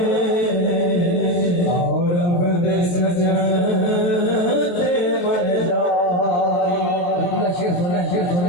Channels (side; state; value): right; late; 23 ms